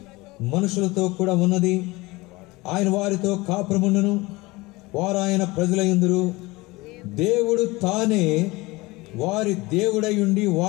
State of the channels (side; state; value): right; quieter; 22.1 dB